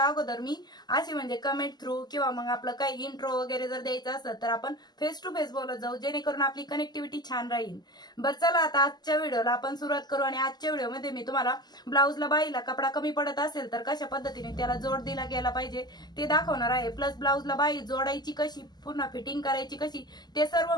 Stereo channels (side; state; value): right; late; 0.20 ms